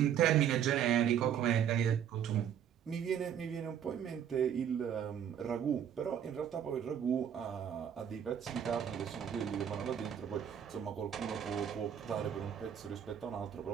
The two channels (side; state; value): left; quieter; 9.0 dB